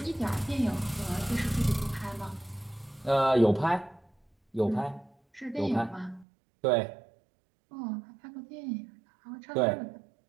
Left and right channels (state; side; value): drops out; left; at 6.2 s